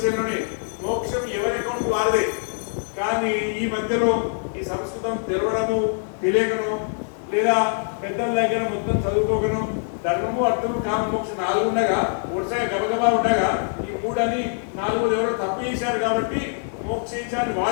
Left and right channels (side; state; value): right; silent; 63 dB below the other